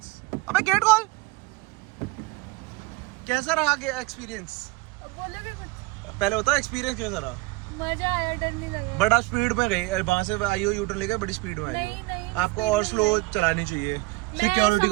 अबे गेट खोल, कैसा रहा एक्सपीरियंस? बोलेगा कुछ? पहले बताओ एक्सपीरियंस कैसा रहा? मजा आया, डर नहीं लगा। बड़ा स्पीड में गई, वहां से आई हो यूटर्न लेके बड़ी स्पीड में आई नहीं, हो। नहीं, आपको और स्लो चलानी चाहिए, सिक्योरिटी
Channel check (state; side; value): quieter; left; 23.0 dB